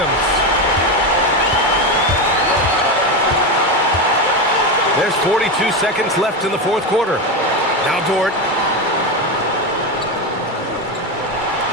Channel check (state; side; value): normal; both; correlation 0.14